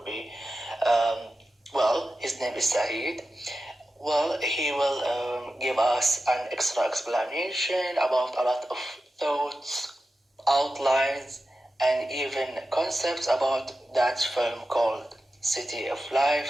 be, his name is Saeed. Well, he will give us an extra explanation about a lot of thoughts, outlines, and even concepts about that film called City of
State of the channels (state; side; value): normal; both; correlation 0.92